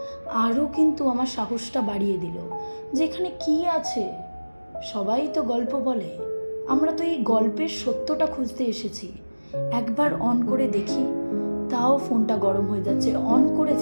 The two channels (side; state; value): both; inverted; correlation -1.00